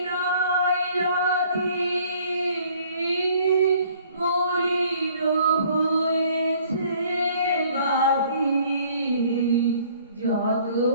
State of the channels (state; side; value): inverted; both; correlation -0.57